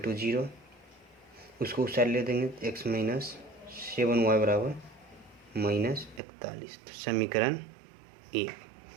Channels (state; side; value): drops out; left; at 6.2 s